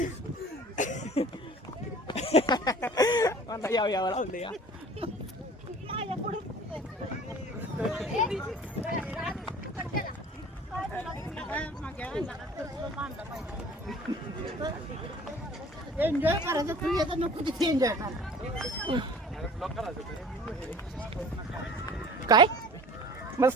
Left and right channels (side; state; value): both; normal; correlation 0.46